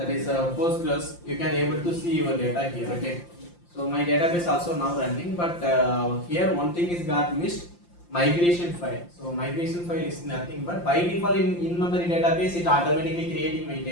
is Postgres. You can able to see your data here. Okay, so my database also now running, but here one thing is got missed, migration file. So migration file is nothing but by default in memory database it automatically creating my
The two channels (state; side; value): late; right; 5.8 ms